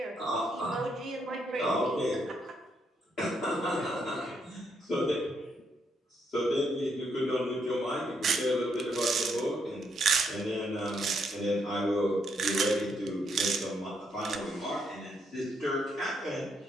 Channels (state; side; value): normal; both; correlation 0.75